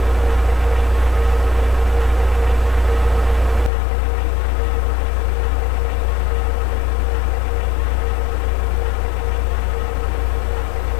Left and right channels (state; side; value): drops out; right; at 3.7 s